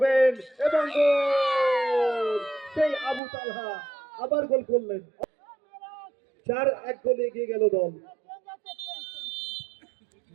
এবং গোল সেই আবু তালহা আবার গোল করলেন 4-1 গোলে এগিয়ে গেল দল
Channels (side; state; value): left; drops out; at 3.2 s